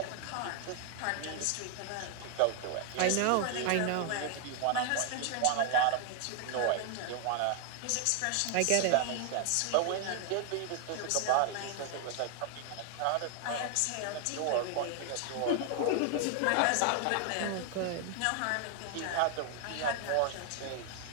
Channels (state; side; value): different; both; correlation 0.00